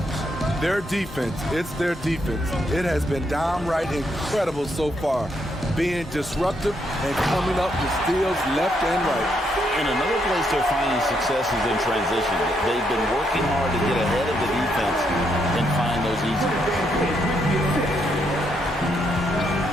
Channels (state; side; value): normal; both; correlation 0.76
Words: Their defense, it's their defense. It has been downright incredible so far. Being disruptive and coming up with steals left and right. And another place they're finding success is in transition. They've been working hard to get ahead of the defense and find those easy ones.